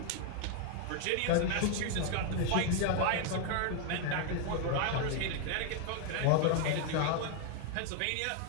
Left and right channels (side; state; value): both; different; correlation 0.01